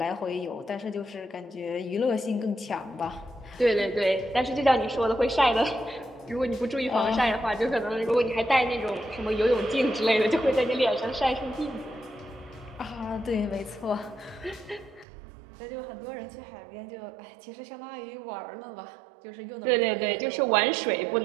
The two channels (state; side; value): drops out; left; at 15.1 s